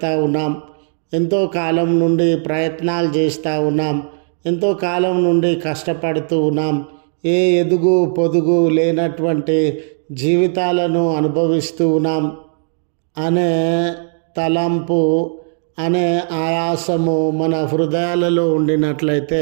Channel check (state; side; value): silent; left; 57 dB below the other